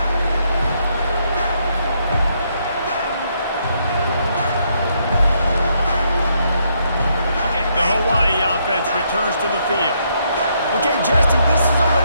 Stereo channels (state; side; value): inverted; both; correlation -0.74